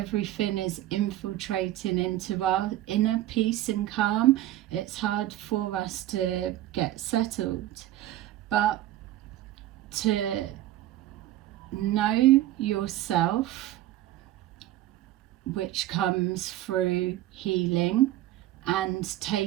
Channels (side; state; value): left; quieter; 14.2 dB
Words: is infiltrating into our inner peace and calm. It's hard for us to get settled. But to know yourself, which comes through healing and